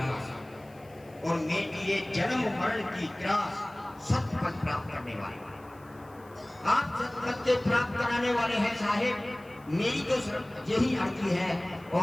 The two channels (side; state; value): left; noise; hiss, 29 dB below the sound